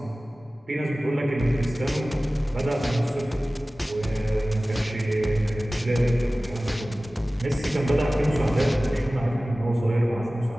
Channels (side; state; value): both; normal; correlation 0.97